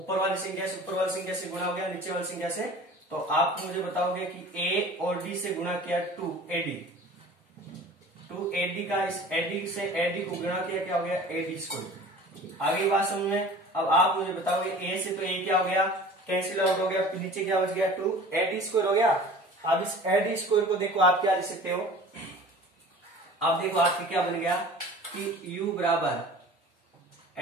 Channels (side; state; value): both; normal; correlation 0.43